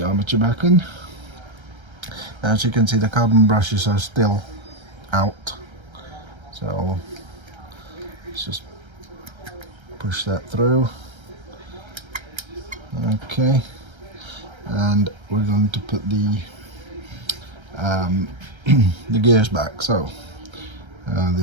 armature back in. As you can see, the carbon brushes are still out, so let's just push that through. Okay, and we're going to put the the gears back. So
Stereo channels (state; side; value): late; left; 1.3 ms